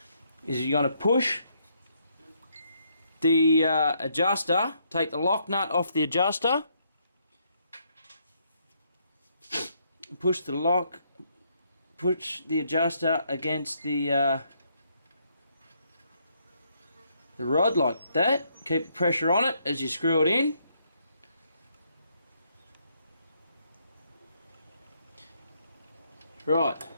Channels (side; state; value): both; inverted; correlation -0.73